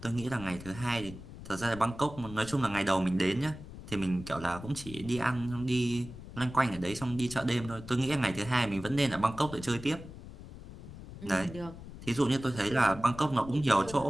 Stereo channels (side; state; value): left; noise; rumble, 14 dB below the sound